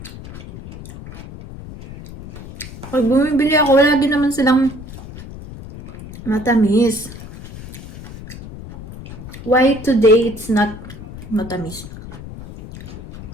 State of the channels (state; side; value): noise; left; rumble, 14 dB below the sound